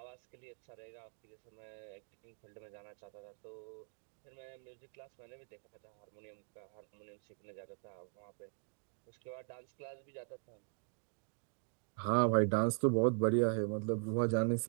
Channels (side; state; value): left; silent; 50 dB below the other